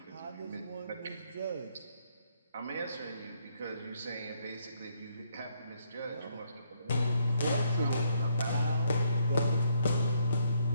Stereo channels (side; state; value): both; inverted; correlation -0.72